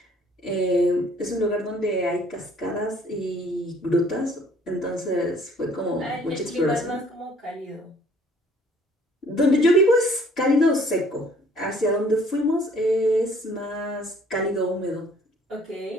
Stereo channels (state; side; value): normal; both; correlation 0.58